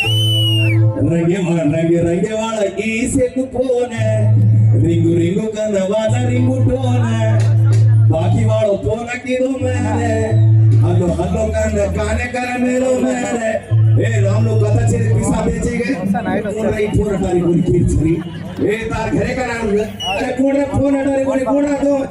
रंगे रंगे रंगे वाला की से कुपोने रिंगू रिंगू कनवाला रिंगू टोने बाकी वालों तो न किरो मैंने हल्लो हल्लो कर गाने कर मेरो मेरे ए राम लोग कथा छे पिसा बेचे गए कोण रही फोन हटारी कोणी किरचरी ए तार घरे का नाम अरे कोण रे फोन हटारी कोणी कोण राहतो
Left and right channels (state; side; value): identical; both; correlation 1.00